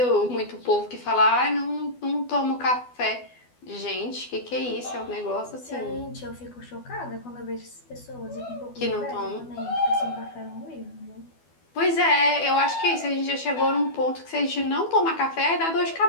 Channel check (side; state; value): right; late; 12 ms